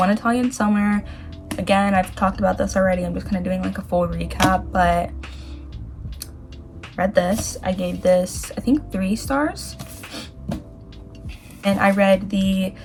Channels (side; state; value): both; identical; correlation 1.00